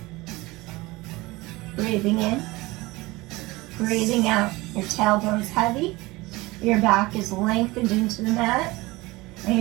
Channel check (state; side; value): quieter; left; 21.3 dB